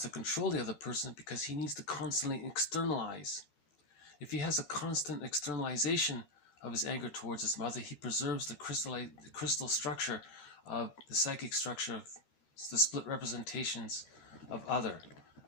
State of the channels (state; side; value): late; right; 13 ms